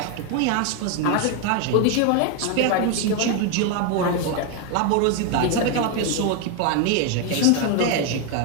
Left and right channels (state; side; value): different; both; correlation 0.01